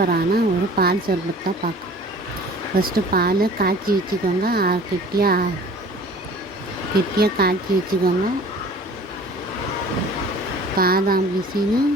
ஒரு பால் சர்பத் தான் பார்க்க. ஃபஸ்ட்டு பால் காய்ச்சி வச்சுக்கோங்க. கெட்டியாக காய்ச்சி வச்சுக்கோங்க. பாதாம் பிசின்னு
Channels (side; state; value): both; normal; correlation 0.46